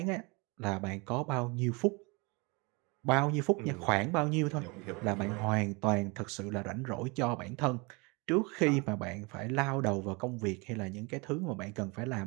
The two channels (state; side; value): quieter; left; 28.3 dB